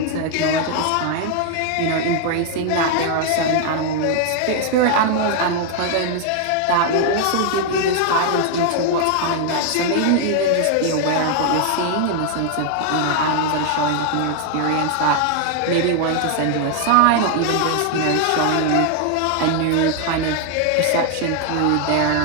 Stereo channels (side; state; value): both; different; correlation 0.00